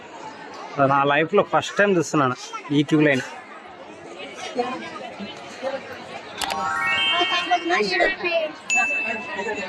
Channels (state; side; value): identical; both; correlation 1.00